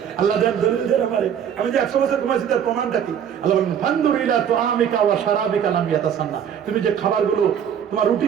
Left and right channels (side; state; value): left; quieter; 8.7 dB